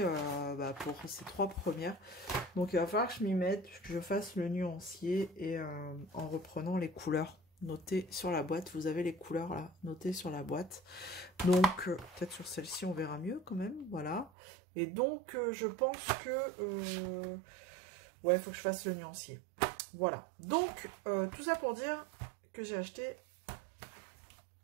bah, pour ces 3 premières. Donc, il va falloir que je m'y mette, que je fasse le nuancier et en reprenant les couleurs. Notez sur la boîte, vous avez les couleurs là, notez sur la boîte. Donc, peut-être sur celle-ci, on verra mieux quand même, voilà. Et donc, je pense que... ouais, il faut que je fasse le nuancier. Voilà. Donc, tout ça pour dire que j'ai acheté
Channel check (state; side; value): drops out; left; at 14.3 s